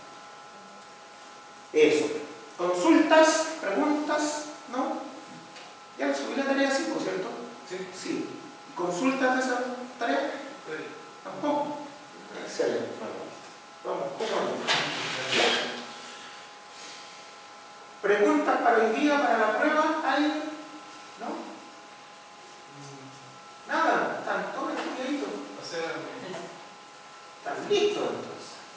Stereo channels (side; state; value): both; identical; correlation 1.00